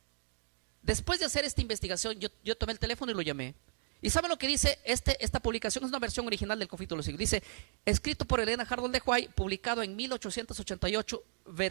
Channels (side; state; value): left; silent; digital silence